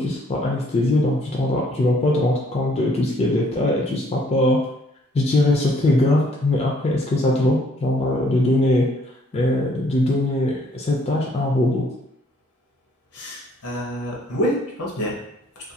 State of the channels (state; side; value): normal; both; correlation 0.64